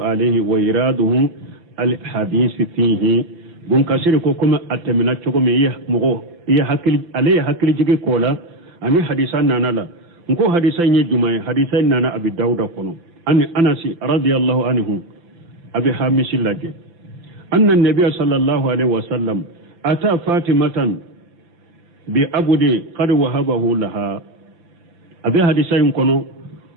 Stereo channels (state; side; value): late; left; 5.9 ms